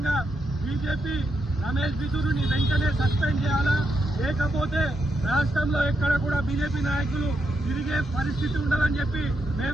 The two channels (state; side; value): normal; both; correlation 0.82